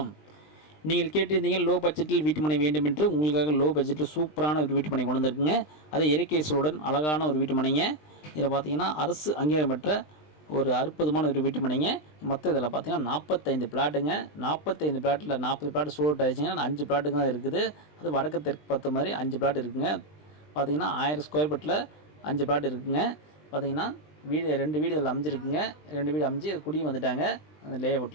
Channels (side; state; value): right; late; 20 ms